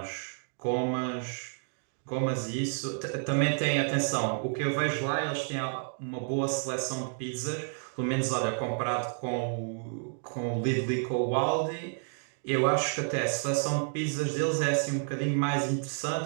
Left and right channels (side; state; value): left; silent; digital silence